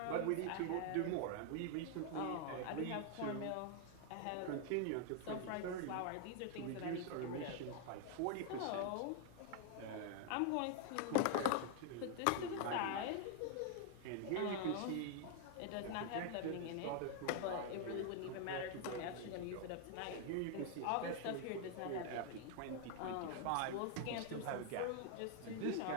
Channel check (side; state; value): both; different; correlation 0.00